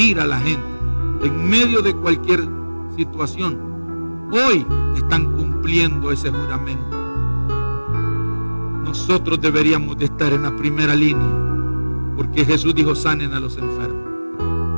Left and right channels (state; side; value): inverted; both; correlation -1.00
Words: a la gente en medio de cualquier situación, hoy están cumpliendo ese juramento. Nosotros deberíamos de estar en la primera línea, porque Jesús dijo: sanen a los enfermos,